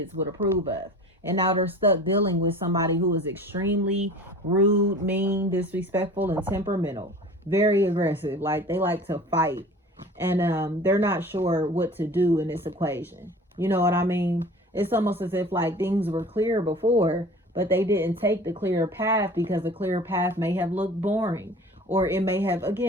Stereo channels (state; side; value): normal; both; correlation 0.41